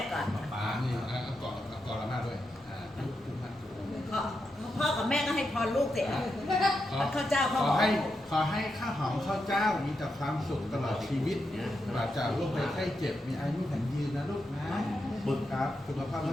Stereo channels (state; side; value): normal; both; correlation 0.85